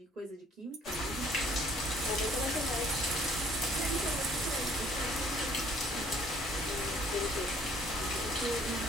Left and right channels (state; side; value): normal; both; correlation 0.59